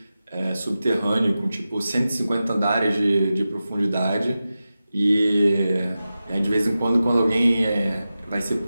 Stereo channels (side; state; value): both; inverted; correlation -0.93